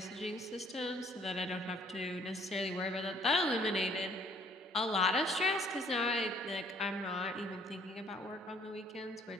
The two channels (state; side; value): normal; both; correlation 0.60